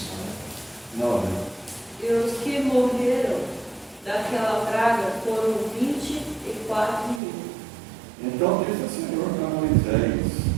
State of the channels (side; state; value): left; drops out; at 7.2 s